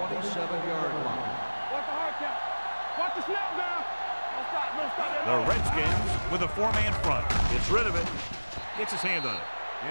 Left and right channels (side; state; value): both; inverted; correlation -1.00